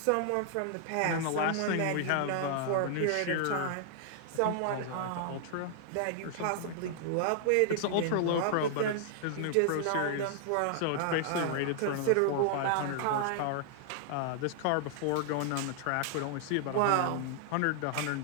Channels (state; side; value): different; both; correlation -0.01